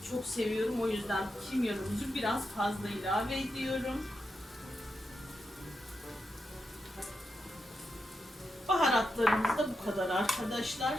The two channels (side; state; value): both; normal; correlation 0.86